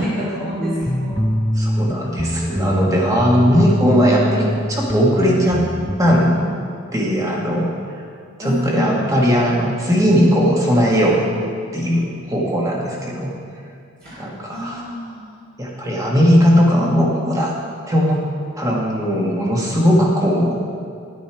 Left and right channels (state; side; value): normal; both; correlation 0.72